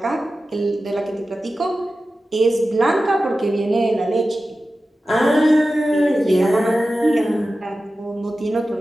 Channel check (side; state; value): both; normal; correlation 0.94